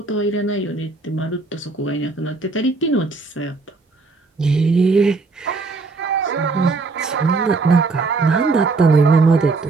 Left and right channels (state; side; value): quieter; left; 3.9 dB